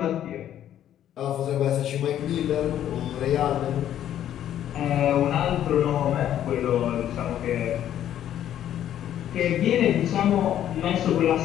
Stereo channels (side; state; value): right; quieter; 11.1 dB